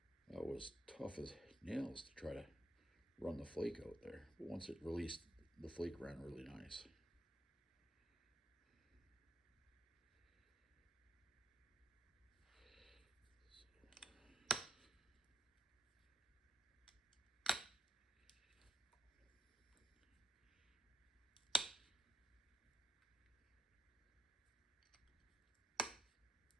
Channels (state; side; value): normal; both; correlation 0.75